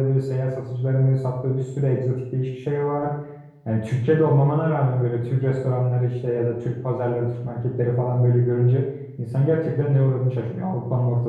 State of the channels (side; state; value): both; identical; correlation 1.00